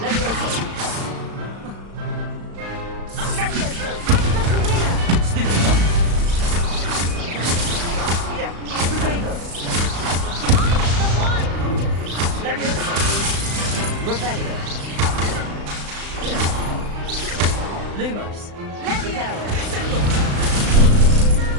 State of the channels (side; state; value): left; late; 35 ms